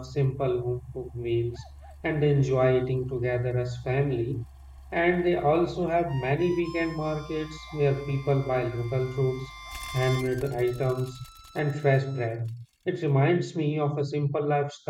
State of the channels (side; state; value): both; identical; correlation 1.00